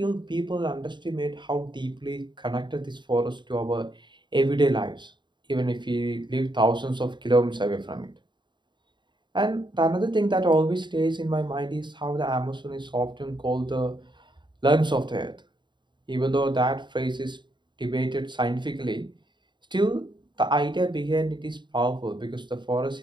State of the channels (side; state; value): left; late; 0.22 ms